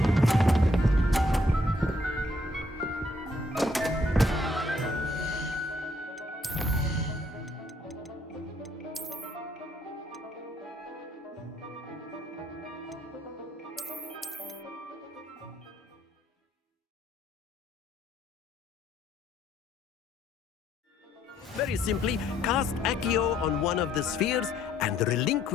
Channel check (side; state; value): both; normal; correlation 0.69